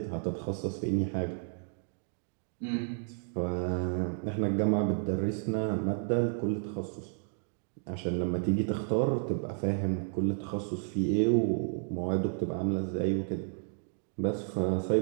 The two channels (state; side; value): silent; left; 56 dB below the other